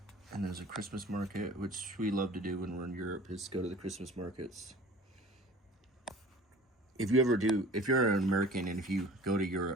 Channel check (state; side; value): normal; both; correlation 0.44